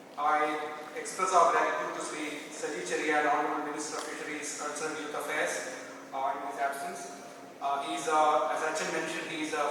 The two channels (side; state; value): both; identical; correlation 1.00